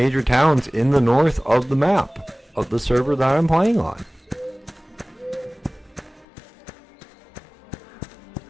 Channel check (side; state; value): right; drops out; at 6.2 s